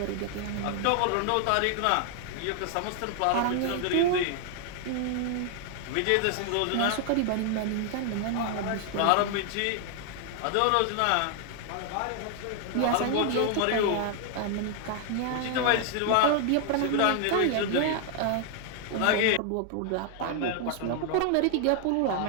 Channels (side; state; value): both; different; correlation 0.00